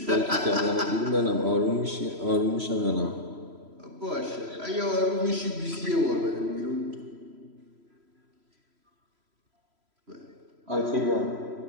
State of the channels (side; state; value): left; late; 3.0 ms